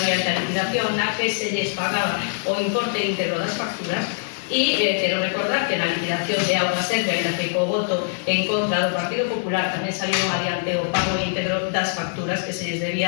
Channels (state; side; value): silent; right; digital silence